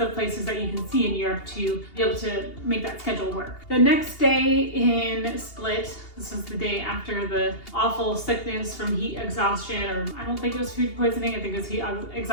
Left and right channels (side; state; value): right; late; 2.8 ms